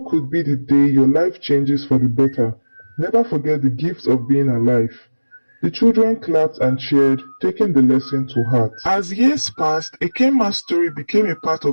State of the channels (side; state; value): both; inverted; correlation -1.00